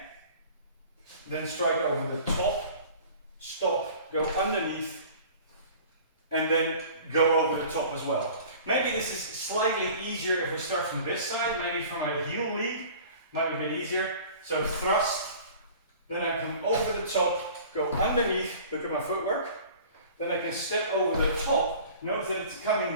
then strike over the top, stop, go underneath, and then go over the top as well. Maybe this is slightly easier if we start from this side, maybe from a heel lead, might be a bit easier. So thrust, then I come over the top, go underneath, look at my footwork, then I can step over the top, notice that it's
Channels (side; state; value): both; inverted; correlation -0.45